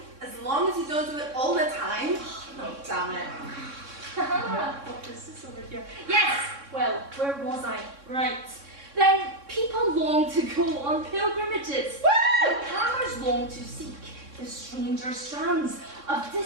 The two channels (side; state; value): left; late; 3.6 ms